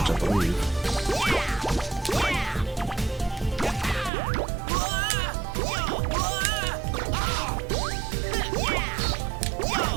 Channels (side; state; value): left; drops out; at 4.1 s